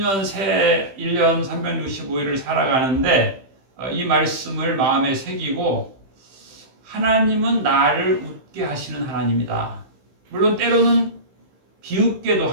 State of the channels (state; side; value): late; left; 15 ms